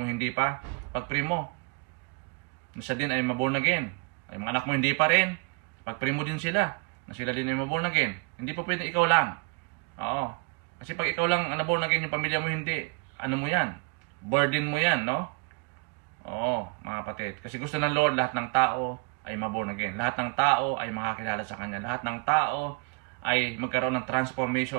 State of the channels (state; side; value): quieter; left; 33.6 dB